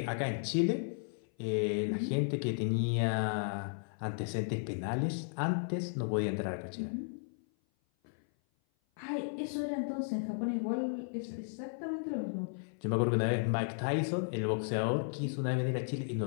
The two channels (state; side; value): silent; right; 55 dB below the other